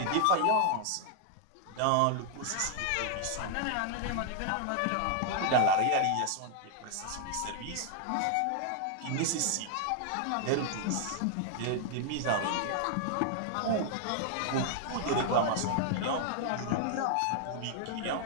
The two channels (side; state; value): both; different; correlation 0.00